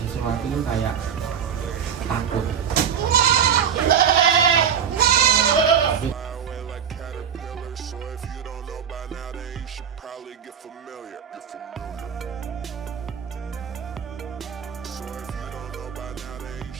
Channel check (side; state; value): left; quieter; 8.0 dB